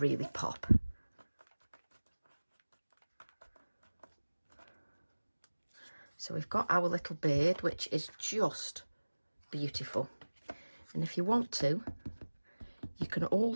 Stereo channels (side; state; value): both; inverted; correlation -1.00